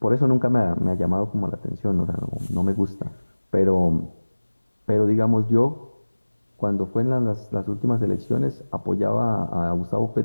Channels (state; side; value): inverted; both; correlation -1.00